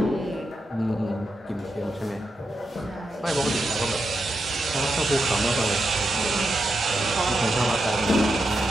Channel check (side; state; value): both; normal; correlation 0.86